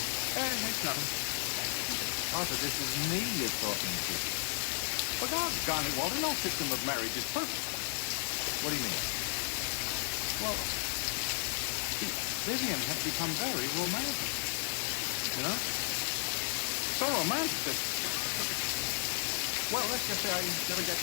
It's nothing. Arthur, this is me you're talking to. Well, doggone it, Walter. No system of marriage is perfect. What do you mean? Well, see, Vivian has become very romantic. You know? So romantic that... Well, let's just say I never get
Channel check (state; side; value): silent; right; digital silence